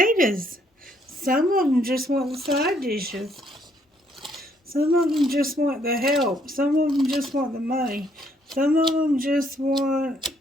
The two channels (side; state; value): both; normal; correlation 0.69